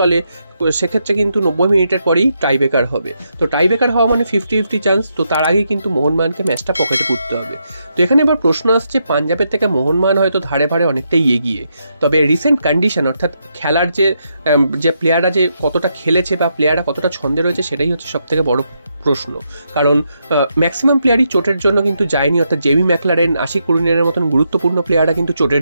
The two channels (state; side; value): inverted; both; correlation -0.81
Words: সেক্ষেত্রে কিন্তু 90 মিনিটের পরেই টাইব্রেকার হবে। তো টাইব্রেকার হওয়া মানে 50-50 চান্স। তো তার আগেই কিন্তু মোহনবাগানকে ম্যাচটা পকেটে পুরতে হবে। তো এখানে এবার প্রশ্ন আসছে, পাঞ্জাবের থেকে মোহনবাগান হয়তো ধারে ভারে অনেকটাই এগিয়ে, তবে রিসেন্ট কন্ডিশন অর্থাৎ খেলার যে প্লেয়াররা যে কতটা খেলেছে বা প্লেয়াররা কতটা ছন্দে রয়েছে সেটাই হচ্ছে সবথেকে বড় প্রশ্ন। কারণ ম্যাক্সিমাম প্লেয়ারই চোটের জন্য কিন্তু যায়নি, অর্থাৎ জেমি ম্যাকলারেন, আশিক কুরিনের মতন গুরুত্বপূর্ণ প্লেয়াররা কিন্তু